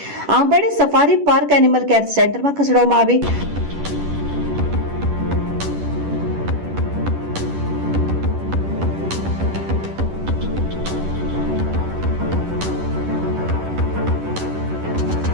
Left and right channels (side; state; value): left; late; 10 ms